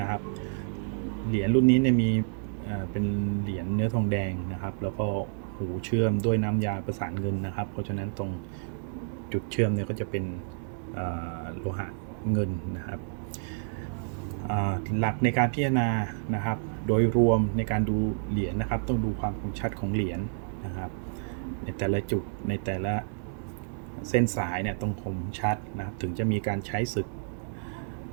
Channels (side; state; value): left; silent; digital silence